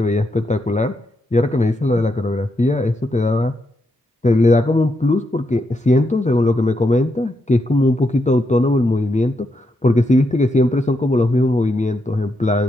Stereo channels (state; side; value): normal; both; correlation 0.81